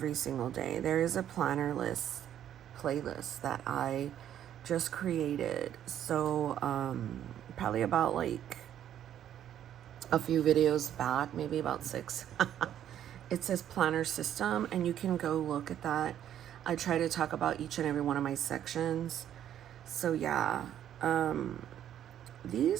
single day. There is a planner list playlist that I just created. So probably about like a few videos back, maybe about 6. It says planner system and you can go look at that. I try to talk about each and every one of my sections. So yeah,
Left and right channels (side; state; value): left; quieter; 10.6 dB